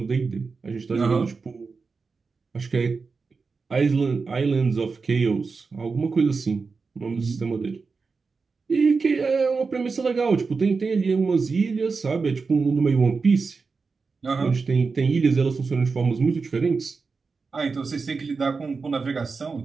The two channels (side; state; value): left; quieter; 4.6 dB